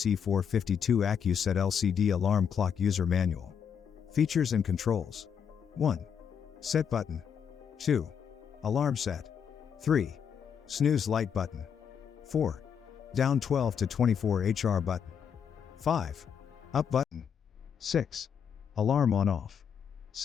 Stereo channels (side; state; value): right; quieter; 7.6 dB